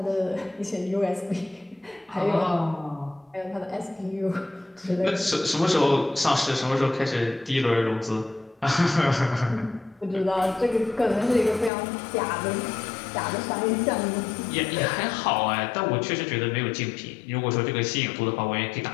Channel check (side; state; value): right; drops out; at 11.7 s